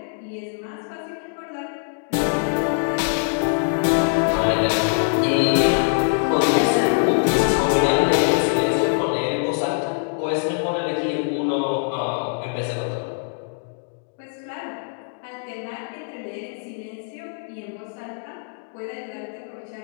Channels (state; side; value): silent; right; 63 dB below the other